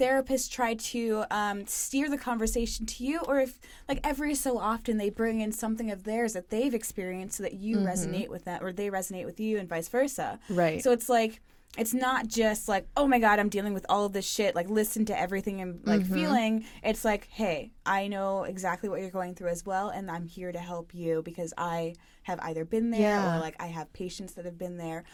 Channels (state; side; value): identical; both; correlation 1.00